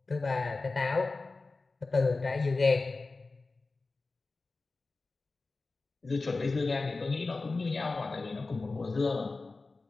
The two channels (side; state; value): right; quieter; 3.7 dB